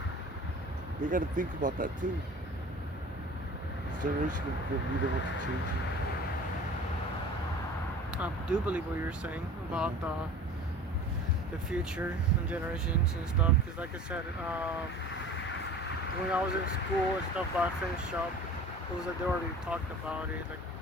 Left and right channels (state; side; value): normal; both; correlation 0.41